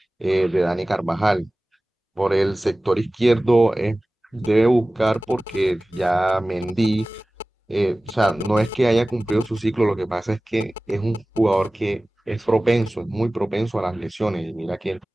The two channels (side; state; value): both; normal; correlation 0.98